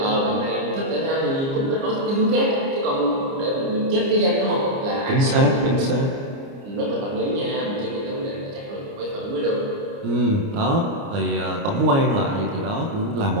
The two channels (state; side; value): late; left; 29 ms